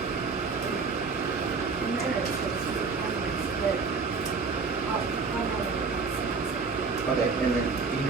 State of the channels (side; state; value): left; quieter; 4.6 dB